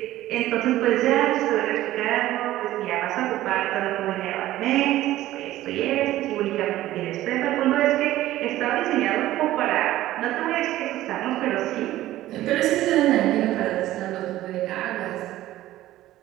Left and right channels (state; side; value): quieter; left; 14.9 dB